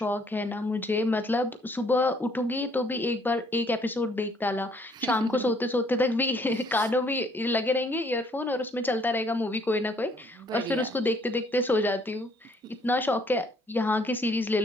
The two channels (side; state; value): both; normal; correlation 0.64